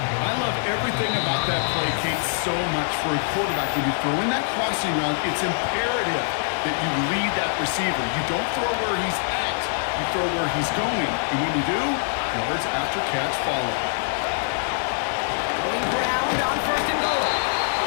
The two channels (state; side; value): silent; right; digital silence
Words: I love everything about that play, Kate, so much for a quarterback. When you throw in that crossing route, it's imperative that you lead that receiver. You don't throw where he's at, you throw where he's going. And when you do, yards after catch follow. Going ground on 1st and goal.